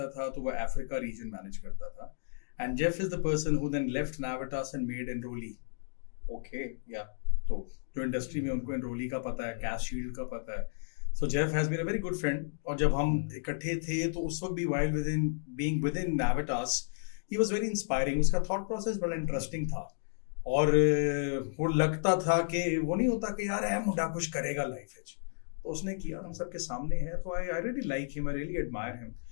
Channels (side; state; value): right; silent; digital silence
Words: था तो वो अफ्रीका रीजन मैनेज करता था, and Jeff is the person who then left Navitas and made Enroly. Okay, या तो जो इंडस्ट्री में उनको एनरोली का पता है, कैश शील्ड का पता है, so Jeff has been a very good friend, और जब हम इकट्ठे थे तो उस वक्त भी while within Navitas he was very inspiring. उसका थॉट प्रोसेस बड़ा इंटरेस्टिंग था, और वो लगता था कि वो नहीं होता कि यार है मुंडा कुछ करेगा लाइफ में, तो उसने किया, हम सबके सामने है. तो I really like him, I really admire him,